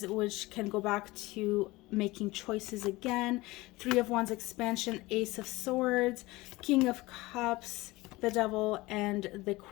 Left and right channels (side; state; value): right; quieter; 20.8 dB